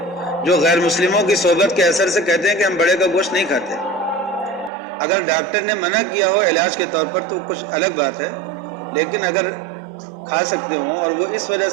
جو غیر مسلموں کی صحبت کے اثر سے کہتے ہیں کہ ہم بڑے کا گوشت نہیں کھاتے۔ اگر ڈاکٹر نے منع کیا ہو علاج کے طور پر تو کچھ الگ بات ہے، لیکن اگر کھا سکتے ہوں اور وہ اس وجہ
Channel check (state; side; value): drops out; left; at 4.7 s